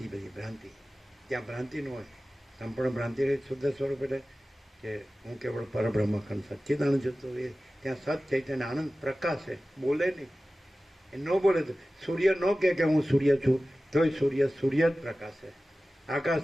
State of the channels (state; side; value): normal; both; correlation 0.96